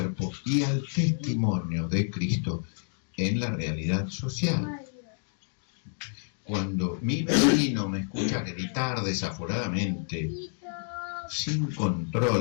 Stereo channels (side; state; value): right; silent; digital silence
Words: y al testimonio de Cristo en la realidad social. Cuando mi vecino me escucha gritar desaforadamente, sin